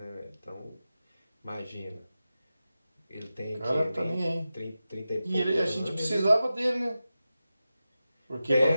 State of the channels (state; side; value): inverted; both; correlation -0.93